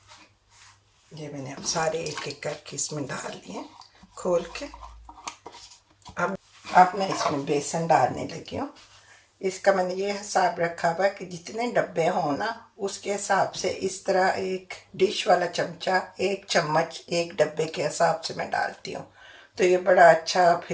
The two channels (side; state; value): both; identical; correlation 1.00